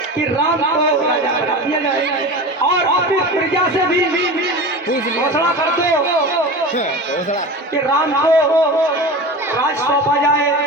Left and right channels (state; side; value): normal; both; correlation 0.30